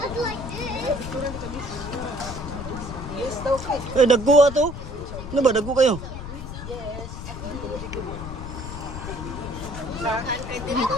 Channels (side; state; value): left; noise; rumble, 9 dB below the sound